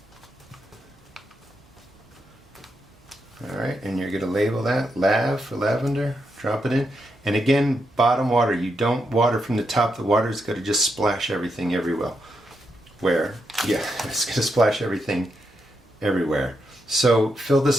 Alright, and you're going to label that Lav for lavender, drop it in. And again, bottom water, you don't water from the top, the water's going to just splash everything everywhere. It's going to splash everything everywhere. So fill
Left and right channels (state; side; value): normal; both; correlation 0.82